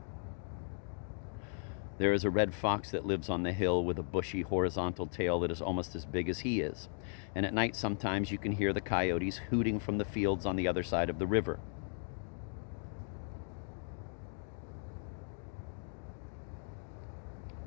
There is a red fox that lives on the hill with a bushy horizontal tail that is almost as big as he is. And at night, sometimes you can hear the coyotes hooting from the fields on the other side of the river.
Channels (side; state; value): right; silent; 53 dB below the other